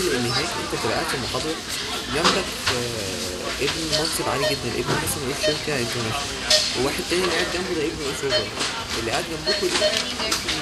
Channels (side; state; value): both; identical; correlation 1.00